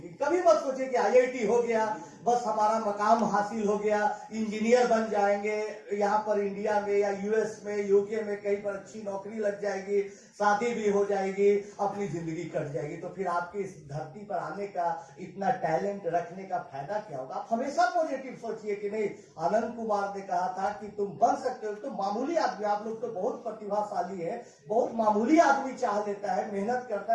कभी मत सोचे कि आईआईटी हो गया बस हमारा मकाम हासिल हो गया, इंजीनियर बन जाएंगे, यहाँ पर इंडिया में या यूएस में, यूके में कहीं पर अच्छी नौकरी लग जाएगी, शादी भी हो जाएगी, अपनी जिंदगी कट जाएगी, तो फिर आपके इस धरती पर आने का, इतना टैलेंट रखने का फायदा क्या होगा। आप हमेशा पॉजिटिव सोचिए कि नहीं, आनंद कुमार ने कहा था कि तुम बन सकते हो। तो मामूली आदमी, आप लोग तो बहुत प्रतिभाशाली है, बहुत मामूली आदमी चाह लेता है, मेहनत करता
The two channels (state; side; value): identical; both; correlation 1.00